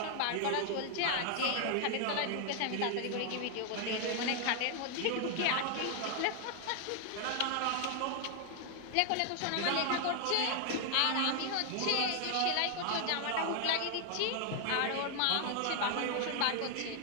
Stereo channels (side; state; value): both; different; correlation 0.00